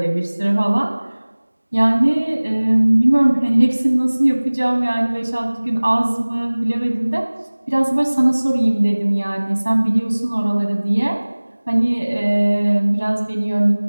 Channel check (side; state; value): both; inverted; correlation -1.00